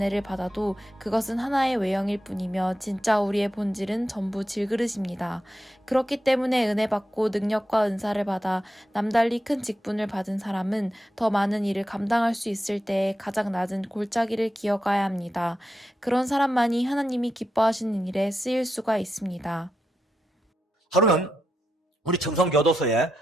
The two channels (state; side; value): normal; both; correlation 0.87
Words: 받아도 그것은 하나의 외형일 뿐이며 진짜 우리의 본질은 전부 질그릇입니다. 그렇기 때문에 은혜 받고 능력과 은사를 받아 남달리 큰 직분을 받은 사람은 더 많은 일을 감당할 수 있을 때에 가장 낮은 골짜기를 기어가야 합니다. 그런 사람만이 하나님이 기뻐하시는 일에 쓰일 수가 있습니다. 하루는 우리 청송교도소에